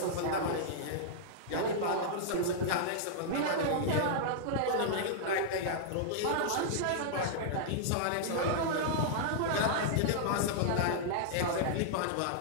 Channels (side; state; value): both; different; correlation -0.01